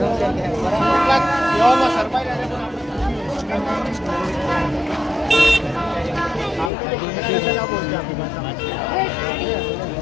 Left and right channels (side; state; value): right; drops out; at 6.7 s